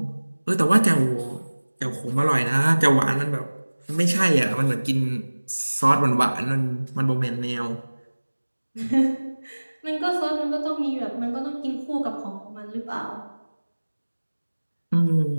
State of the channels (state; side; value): inverted; both; correlation -1.00